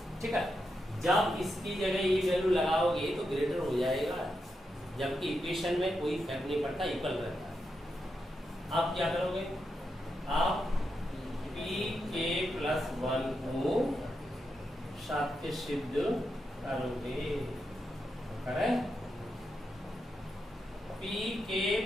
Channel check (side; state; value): both; normal; correlation 0.85